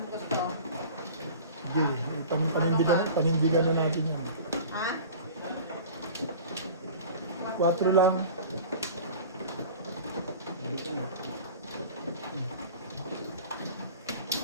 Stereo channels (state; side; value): inverted; both; correlation -0.40